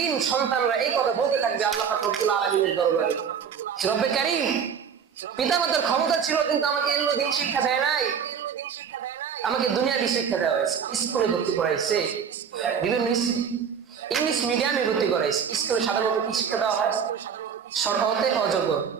সন্তানরা এই কথা বলতে থাকবে আল্লাহ পাক রব্বুল আলামিনের দরবারে, রব্বে কারীম, পিতামাতার ক্ষমতা ছিল কিন্তু আমাকে এগুলো দিন শিক্ষা দেয় নাই, আমাকে দুনিয়াবি শিক্ষা দেওয়া হয়েছে, স্কুলে ভর্তি করাইছে, বিভিন্ন ইংলিশ মিডিয়ামে ভর্তি করাইছে। স্কুলে সাধারণত কি শিক্ষা দেওয়া হয়? সরহতে অজগর,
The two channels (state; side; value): quieter; left; 7.2 dB